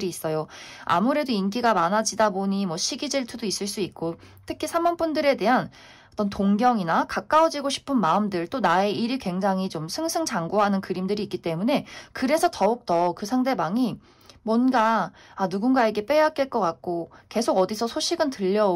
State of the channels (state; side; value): identical; both; correlation 1.00